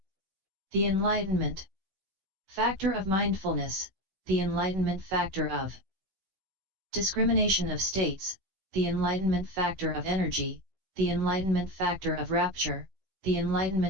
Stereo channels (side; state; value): left; late; 16 ms